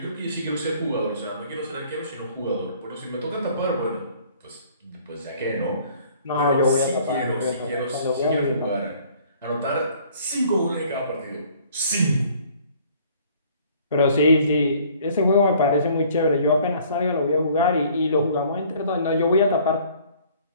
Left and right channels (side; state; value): both; inverted; correlation -0.56